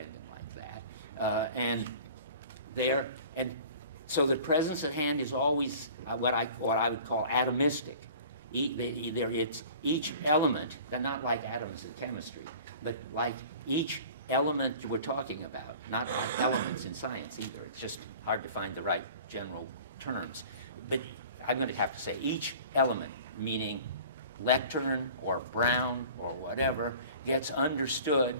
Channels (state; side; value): inverted; both; correlation -0.44